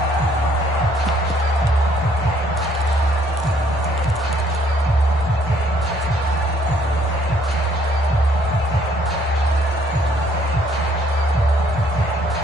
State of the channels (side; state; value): both; normal; correlation 0.64